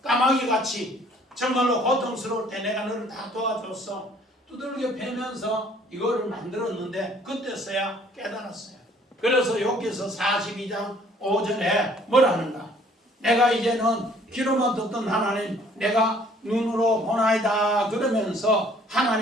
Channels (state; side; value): normal; both; correlation 0.58